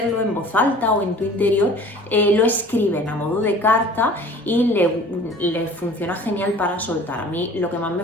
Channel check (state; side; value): normal; both; correlation 0.46